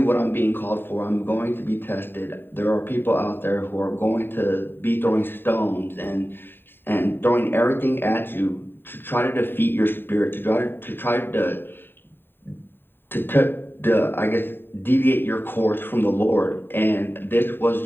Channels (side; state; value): right; late; 0.099 ms